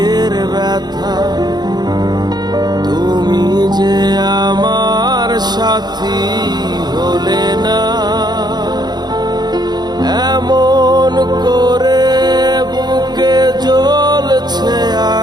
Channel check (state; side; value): late; left; 0.20 ms